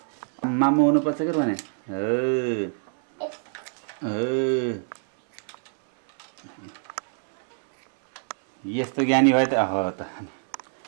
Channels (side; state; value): left; silent; digital silence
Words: मामु हुनुपर्छ कि भने यस्तो ज्ञानी भयो त त